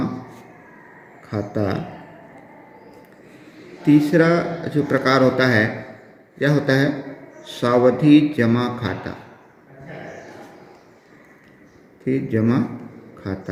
खाता। तीसरा जो प्रकार होता है यह होता है सावधि जमा खाता। जमा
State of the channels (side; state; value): both; identical; correlation 1.00